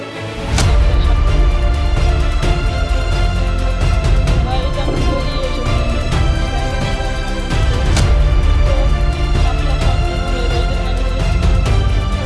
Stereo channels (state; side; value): identical; both; correlation 1.00